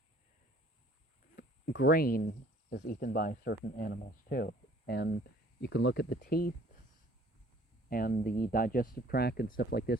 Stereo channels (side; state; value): both; normal; correlation 0.55